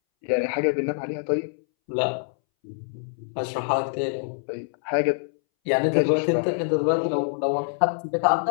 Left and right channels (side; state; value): right; silent; 62 dB below the other